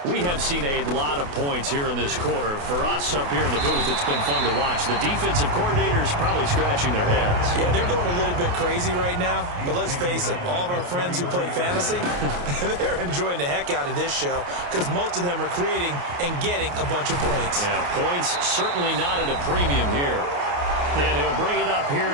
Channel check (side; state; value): left; late; 28 ms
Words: We have seen a lot of points here in this quarter. For us up here in the booth, it's been fun to watch. The defensive coordinators probably scratching their heads. Yeah, they're going a little bit crazy right now. But let's face it, all of our friends who play fantasy, they're enjoying the heck out of this show because most of them are creating and getting a bunch of points. Yeah, points certainly not at a premium here. And he'll bring it up here